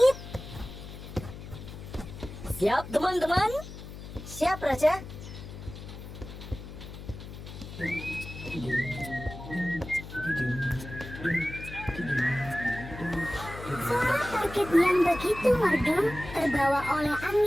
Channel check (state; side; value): noise; left; hum, 12 dB below the sound